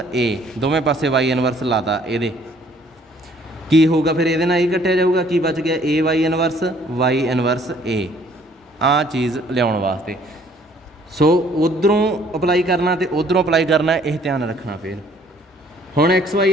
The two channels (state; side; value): normal; both; correlation 0.60